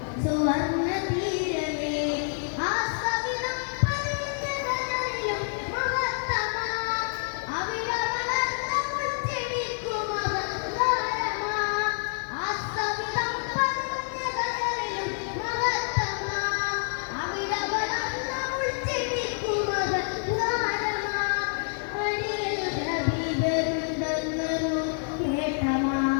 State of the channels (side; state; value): right; silent; digital silence